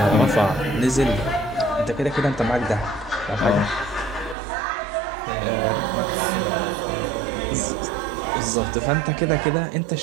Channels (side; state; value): left; drops out; at 4.4 s